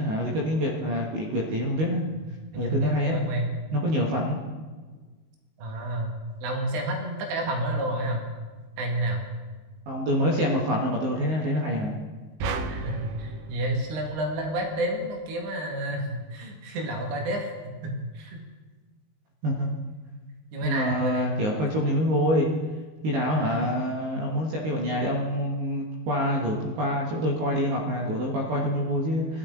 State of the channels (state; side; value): late; left; 19 ms